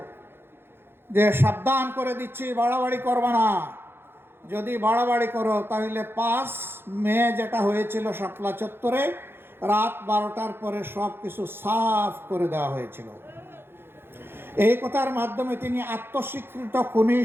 যে সাবধান করে দিচ্ছি, বাড়াবাড়ি করবা না, যদি বাড়াবাড়ি করো তাহলে 5 মে যেটা হয়েছিল শাপলা চত্বরে রাত 12টার পরে সব কিছু সাফ করে দেওয়া হয়েছিল। এই কথার মাধ্যমে তিনি আত্মস্বীকৃত খুনি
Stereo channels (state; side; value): late; left; 0.11 ms